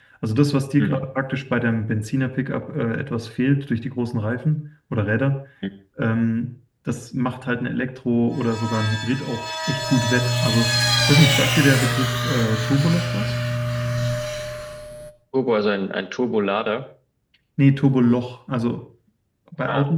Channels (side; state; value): both; identical; correlation 1.00